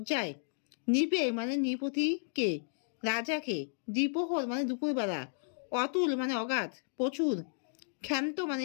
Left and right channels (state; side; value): silent; right; digital silence